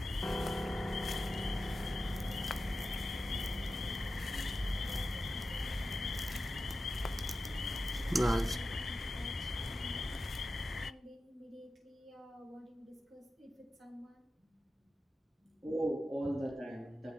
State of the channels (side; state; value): both; normal; correlation 0.92